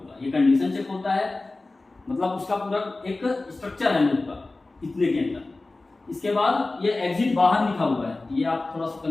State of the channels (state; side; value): quieter; right; 3.2 dB